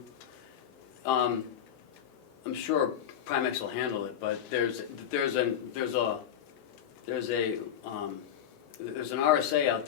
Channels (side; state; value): right; quieter; 9.5 dB